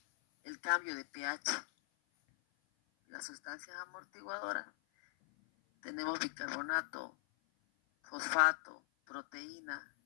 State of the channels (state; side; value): silent; right; 51 dB below the other